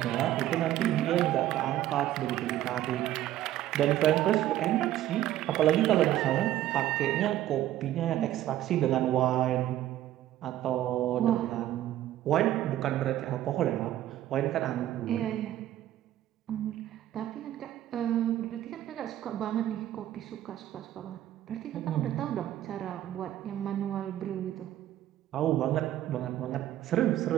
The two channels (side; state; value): left; quieter; 13.2 dB